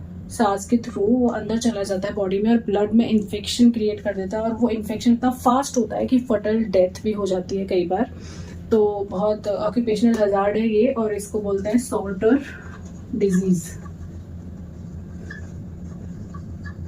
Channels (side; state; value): both; identical; correlation 1.00